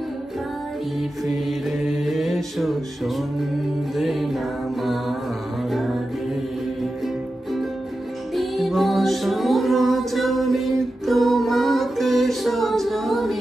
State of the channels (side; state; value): both; normal; correlation 0.92